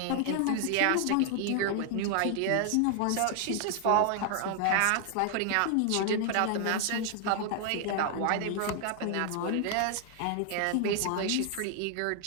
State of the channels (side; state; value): both; different; correlation 0.00